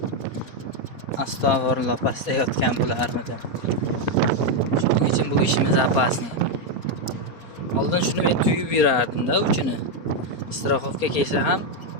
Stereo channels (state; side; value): late; right; 4.1 ms